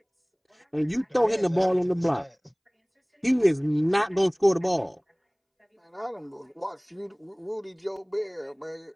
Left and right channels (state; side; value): identical; both; correlation 1.00